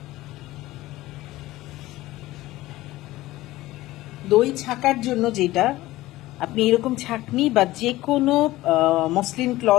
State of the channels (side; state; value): right; quieter; 17.2 dB